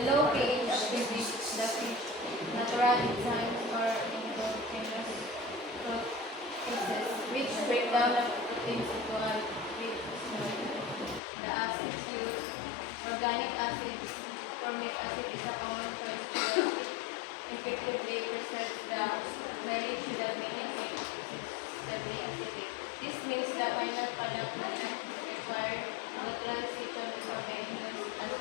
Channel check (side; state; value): right; drops out; at 11.2 s